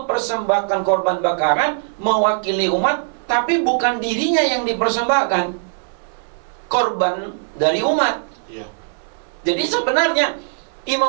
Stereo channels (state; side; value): silent; left; 63 dB below the other